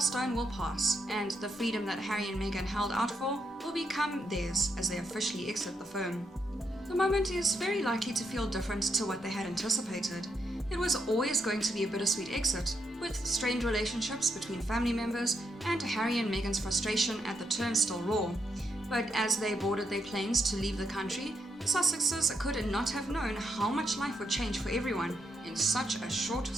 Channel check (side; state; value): both; normal; correlation 0.79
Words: will pass, and the freedom that Harry and Meghan held out for will become theirs as they officially exit the firm. The moment is very likely to feel different to what they had anticipated. It was always going to be a bittersweet exit, with strained relationships between family members and Harry and Meghan's frustration at the term still raw. But as they boarded their planes to leave the country, the Sussexes could not have known how much life would change for everyone in such a short